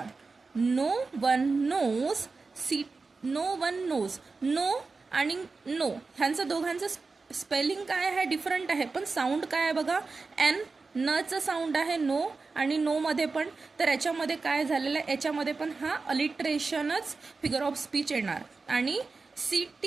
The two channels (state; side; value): quieter; left; 4.1 dB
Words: नो वन नोज, नो आणि नो ह्यांचं दोघांचं स्पेलिंग काय आहे, डिफरंट आहे, पण साऊंड काय आहे बघा. नचं साऊंड आहे नो, आणि नो मध्ये पण. तर याच्यामध्ये काय झालेलं आहे, याच्यामध्ये पण हा अलिट्रेशनच फिगर ऑफ स्पीच येणार. आणि